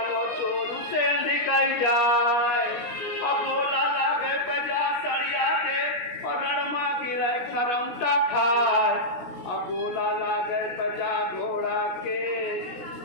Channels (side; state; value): right; late; 17 ms